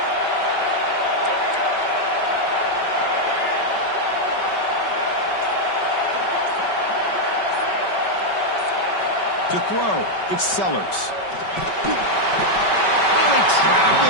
To throw, it's Sellers. Really trapped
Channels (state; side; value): late; right; 5.2 ms